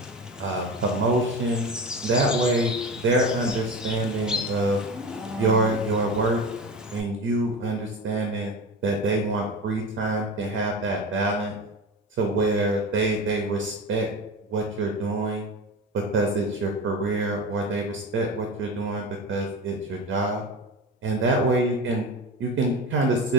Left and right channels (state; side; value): normal; both; correlation 0.27